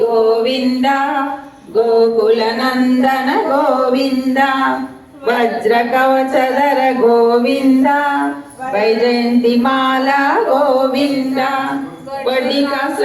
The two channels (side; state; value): both; identical; correlation 1.00